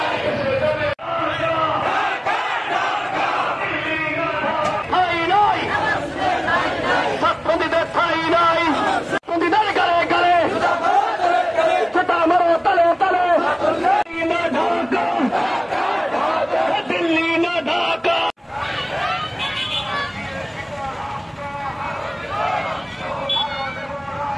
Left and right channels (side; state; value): both; identical; correlation 1.00